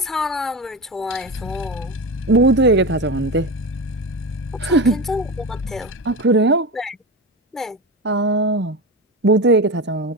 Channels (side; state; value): both; normal; correlation 0.22